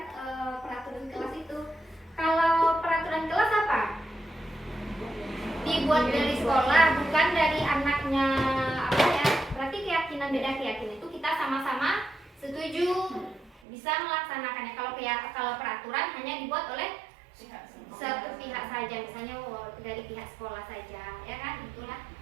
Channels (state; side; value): drops out; left; at 13.6 s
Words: peraturan kelas itu. Kalau peraturan kelas apa? Dibuat dari sekolah, bukan dari anaknya apa ya. Berarti keyakinan beda keyakinan itu kita sama-sama setuju bisa melaksanakannya. Kalau peraturan hanya dibuat oleh satu pihak saja, misalnya dari pihak sekolah saja, ya kan? Itulah